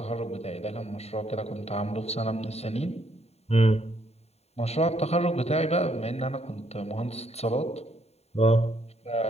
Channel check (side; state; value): right; late; 0.30 ms